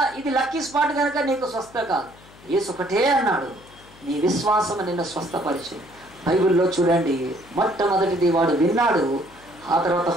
ఇది లక్కీ స్పాట్ కనుక నీకు స్వస్థ కాదు. యేసు ఒకటే అన్నాడు, నీ విశ్వాసం నిన్ను స్వస్థపరిచు. బైబిల్లో చూడండి, మొట్టమొదటిది వాడు విన్నాడు, ఆ తర్వాత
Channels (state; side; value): noise; left; hum, 24 dB below the sound